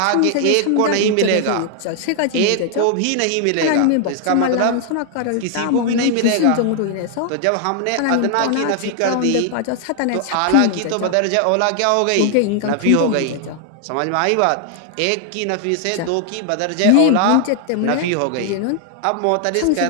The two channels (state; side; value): different; both; correlation 0.00